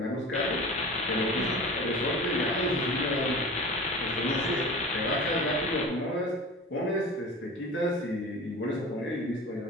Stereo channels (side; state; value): both; normal; correlation 0.36